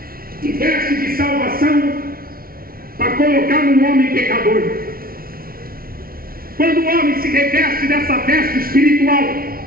e veste de salvação para colocar no homem pecador. Quando o homem se reveste dessa veste espiritual,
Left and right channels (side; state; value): left; late; 0.43 ms